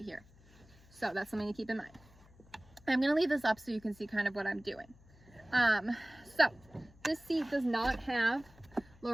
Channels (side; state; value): left; noise; hum, 25 dB below the sound